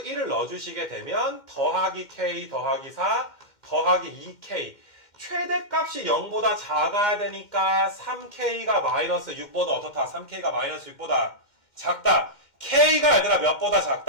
1을 넣어주시게 되면 더하기 k 더하기 4 더하기 2k, 최대값이 0보다 작아야 되니까 3k가 마이너스 6보다 어떻다? 3k가 마이너스 6보다 작다. k가 얘들아 몇보다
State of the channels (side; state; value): right; late; 2.1 ms